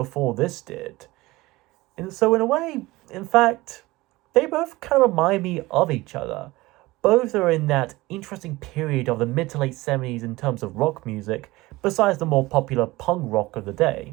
this did. And so in a way, in fact, they both kind of remind me of each other. Both are in that interesting period of the mid to late 70s in terms of rock music, besides the more popular punk rock of the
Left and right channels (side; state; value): left; quieter; 19.9 dB